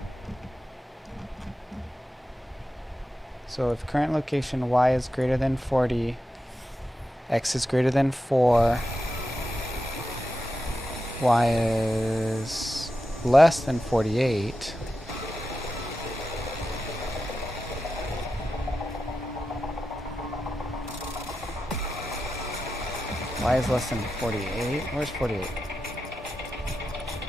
so if current location y is greater than 40, x is greater than 4, y is less than 48, y is less than 48. Where's 48?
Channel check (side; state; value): both; normal; correlation 0.90